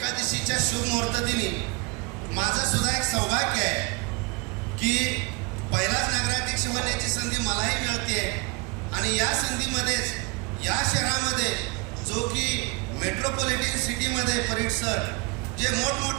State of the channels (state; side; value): quieter; left; 28.7 dB